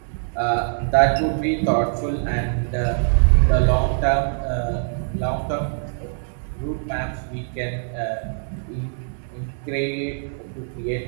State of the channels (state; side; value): silent; left; digital silence